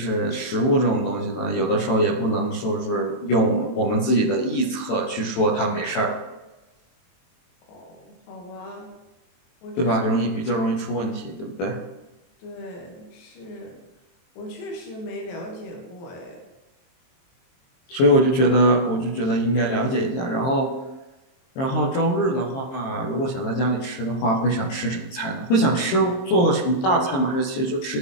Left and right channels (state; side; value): late; right; 23 ms